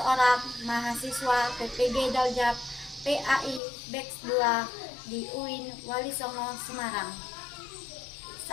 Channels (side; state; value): right; drops out; at 3.6 s